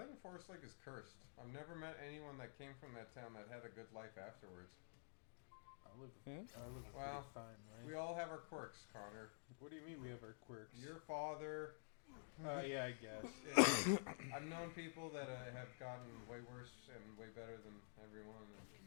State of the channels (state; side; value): silent; right; digital silence